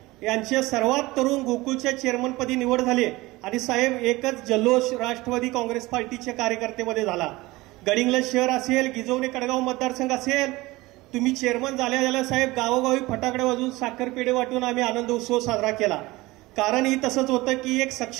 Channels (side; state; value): left; quieter; 20.4 dB